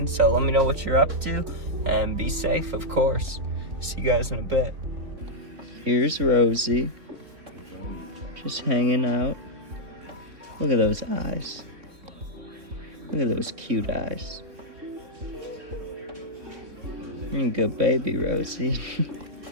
So let me know what you're up to. And be safe, of course. See you guys in a bit. Here's Rosie. Just hanging out. Look at those eyes. Look at those cute eyes. You're a good baby, Rosie.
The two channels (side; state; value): left; late; 3.8 ms